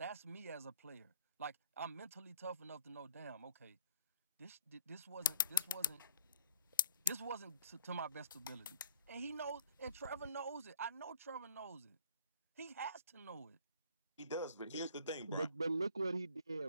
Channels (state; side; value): inverted; both; correlation -0.55